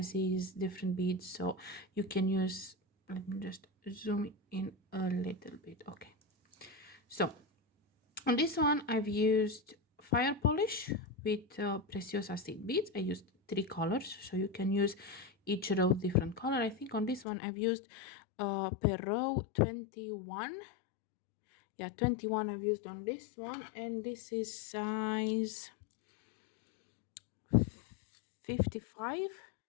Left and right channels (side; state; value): right; drops out; at 17.2 s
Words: different beads, so you can use... Let me just zoom in a little bit. Okay. So on this one, I've used fire polish with precious acid beads. I used 3 colors, so you can use each row different color. I think on this one I've used per row 21. Yeah, 21 I've used on this one, and this is size 55.